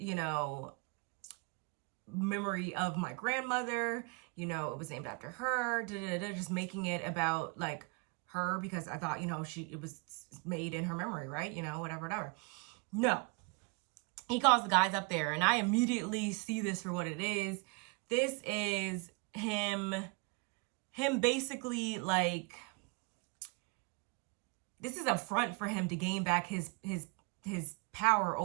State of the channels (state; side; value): quieter; left; 31.3 dB